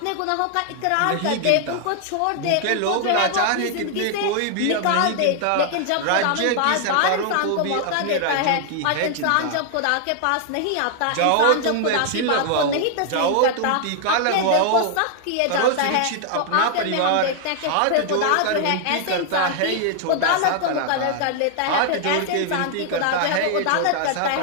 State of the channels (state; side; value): different; both; correlation 0.00